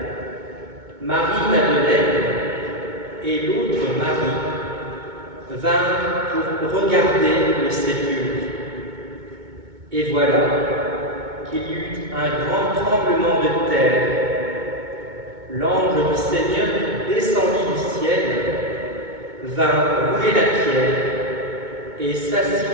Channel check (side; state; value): left; late; 2.2 ms